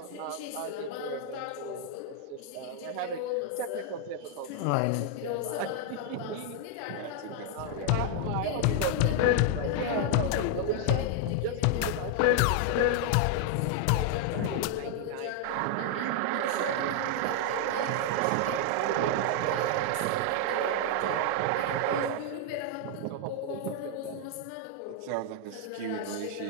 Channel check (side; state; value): both; different; correlation 0.00